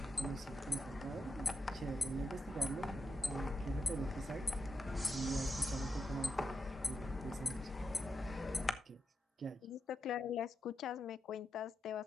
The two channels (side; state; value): both; normal; correlation 0.85